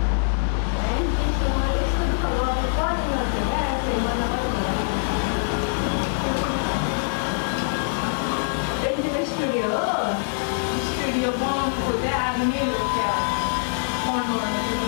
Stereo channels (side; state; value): right; silent; digital silence